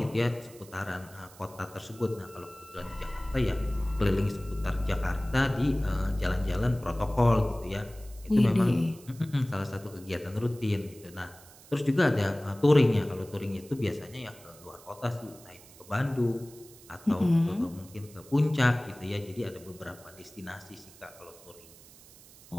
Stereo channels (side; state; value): right; noise; hiss, 22 dB below the sound